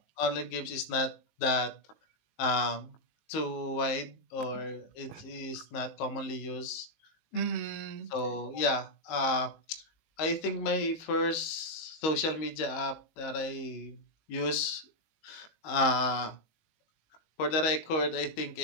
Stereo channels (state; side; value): late; right; 19 ms